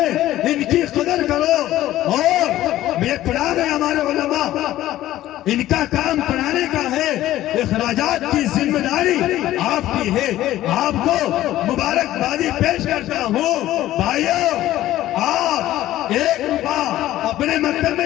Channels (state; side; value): quieter; right; 14.3 dB